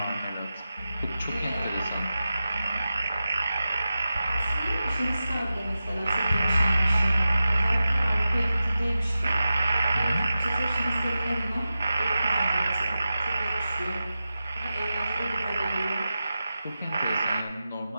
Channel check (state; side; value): inverted; both; correlation -0.93